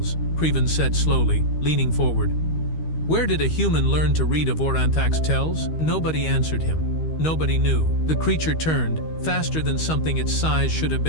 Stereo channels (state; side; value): late; right; 13 ms